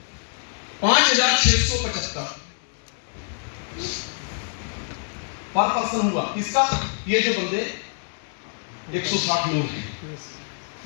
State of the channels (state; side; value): silent; right; 62 dB below the other